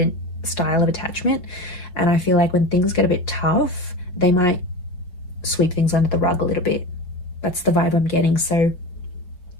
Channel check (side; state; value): right; late; 5.6 ms